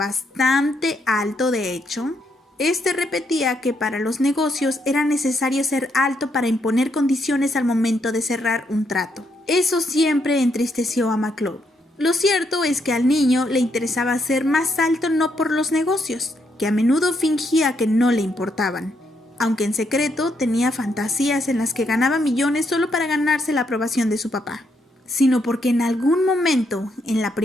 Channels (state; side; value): normal; both; correlation 0.76